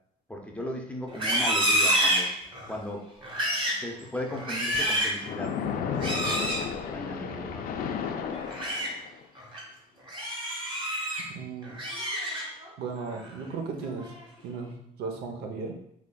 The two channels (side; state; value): both; normal; correlation 0.13